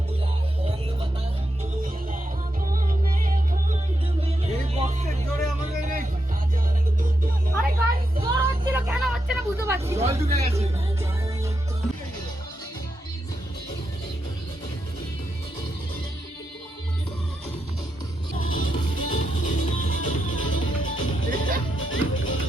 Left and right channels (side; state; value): both; normal; correlation 0.84